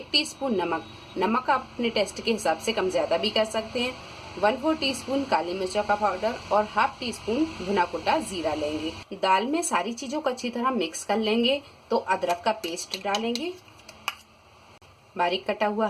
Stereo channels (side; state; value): both; identical; correlation 1.00